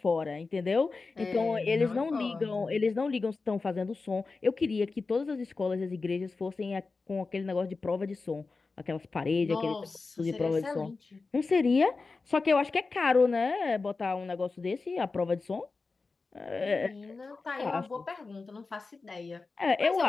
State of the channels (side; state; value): right; quieter; 4.0 dB